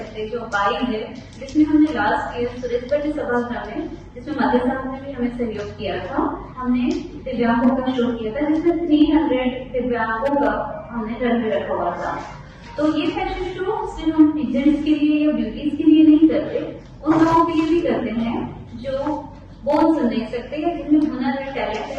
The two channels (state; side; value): identical; both; correlation 1.00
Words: जो बाई है, जिसमें हमने लास्ट ईयर सुरेश भट्ट सभागृह में, जिसमें मध्य साहब ने भी हमें सहयोग किया था, हमने दिव्यांगों का शो किया था, जिसमें 300 दिव्यांगों का हमने रन में रखा हुआ था। तो ये फैशन शो सिर्फ हम पीजेंट्स के लिए या ब्यूटीज के लिए नहीं करते, उन लोगों के लिए भी करते हैं जो बोल सुन नहीं सकते या जिनमें हुनर है, टैलेंट